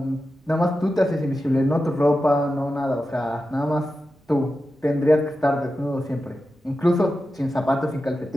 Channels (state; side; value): normal; both; correlation 0.91